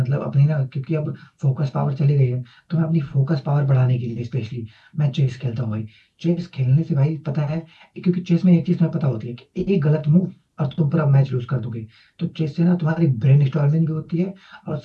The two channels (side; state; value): both; identical; correlation 1.00